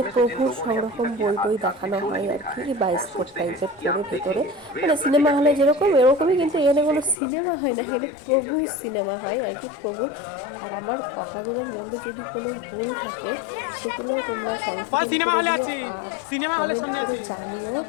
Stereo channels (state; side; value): drops out; right; at 7.2 s